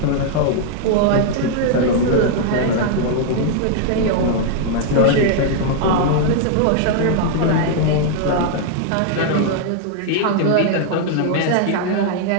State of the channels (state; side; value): different; both; correlation 0.00